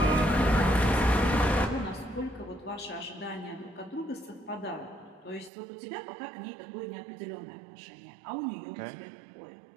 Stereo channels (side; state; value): left; drops out; at 5.5 s